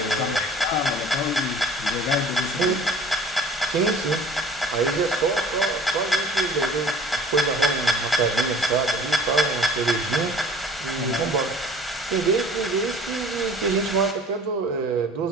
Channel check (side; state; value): both; normal; correlation 0.48